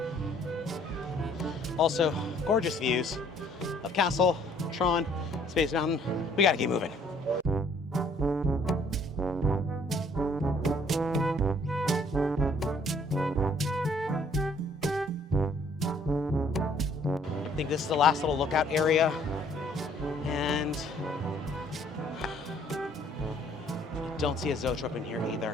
Also, gorgeous views of Castle, Tron, Space Mountain. We got to keep moving. I think this is the last little lookout area, and don't see a zoetrope in here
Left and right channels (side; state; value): both; normal; correlation 0.61